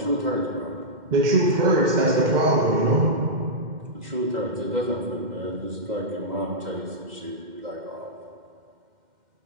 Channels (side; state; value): left; late; 2.1 ms